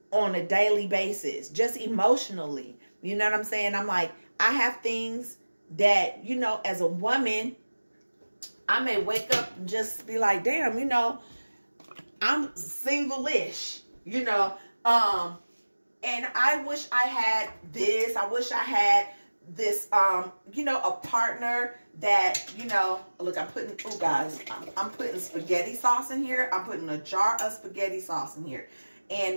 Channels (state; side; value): inverted; both; correlation -1.00